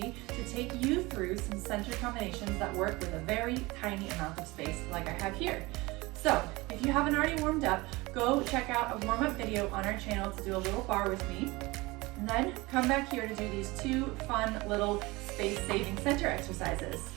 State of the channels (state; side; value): quieter; left; 22.4 dB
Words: to take you through some center combinations that work with a very tiny amount of space like I have here. So if you haven't already warmed up, go check out a warm-up video on our channel to do a little bar with me. And then come back here to do these two fun little space-saving center exercises.